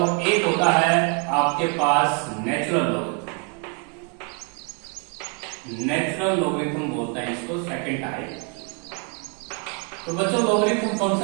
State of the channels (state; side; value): quieter; left; 37.1 dB